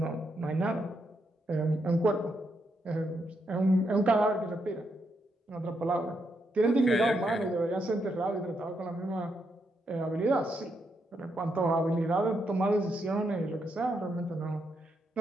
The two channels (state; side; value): normal; both; correlation 0.80